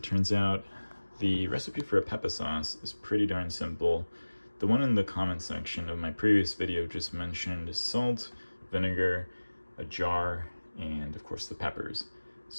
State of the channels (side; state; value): both; inverted; correlation -1.00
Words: turns out, the recipe for a Peppa sauce is pretty darn simple. The one in the comment section of my previous video just mentioned salt, vinegar, a jar, and of course the peppers.